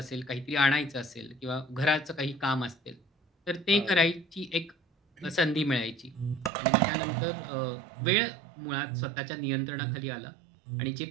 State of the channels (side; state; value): left; drops out; at 6.5 s